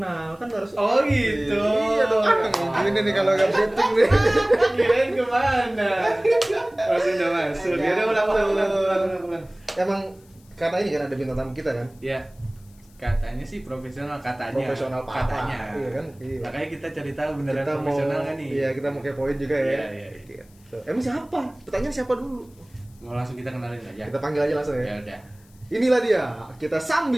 kan harus. Oh gitu. Iya dong. Gini nih kalau nggak briefing nih. Kirain kemana? Masuk udah masuk. Ya udah ulang. Emang karena ini kan ada bintang tamu kita kan. Ya. Katanya sih profesional katanya. Profesional parah. katanya. Iya kan? Iya. Makanya kita cari tahu beneran Kita profesional mau, kan nih. Iya, kita mau kepoin juga ya. Iya. Gitu. Emang siapa? Pertanyaan siapa dulu? Mau langsung kita kenalin aja. Kita panggil aja langsung ya. Ya udah. Inilah dia, kita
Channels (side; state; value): left; noise; hiss, 30 dB below the sound